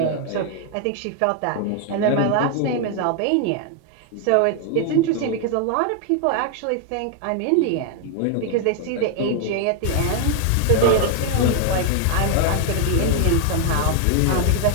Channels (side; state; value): both; different; correlation 0.00